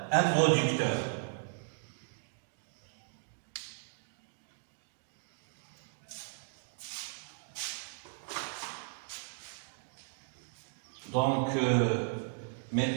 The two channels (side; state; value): left; silent; digital silence